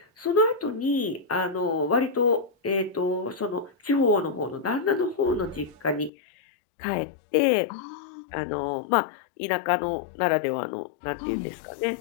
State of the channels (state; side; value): drops out; right; at 6.1 s